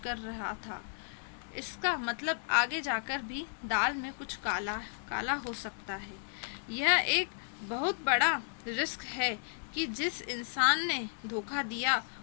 रहा था। इसका मतलब आगे जाकर भी दाल में कुछ काला काला हो सकता है। यह एक बहुत बड़ा रिस्क है कि जिस इंसान ने धोखा दिया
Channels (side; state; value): right; silent; digital silence